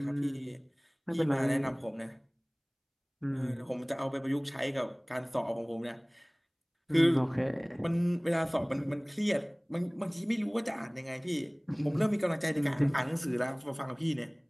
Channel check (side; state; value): both; identical; correlation 1.00